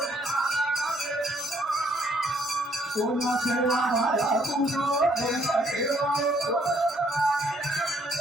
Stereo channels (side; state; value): both; normal; correlation 0.67